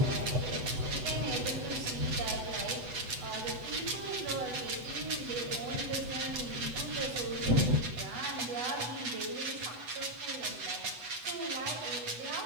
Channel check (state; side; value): late; left; 8.1 ms